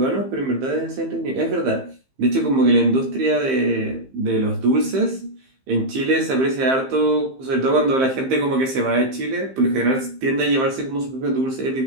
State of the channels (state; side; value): late; left; 15 ms